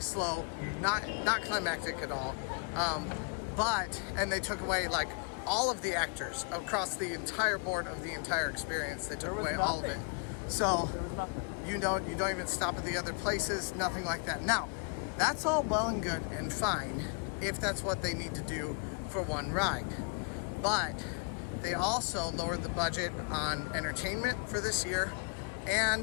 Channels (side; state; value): right; quieter; 33.4 dB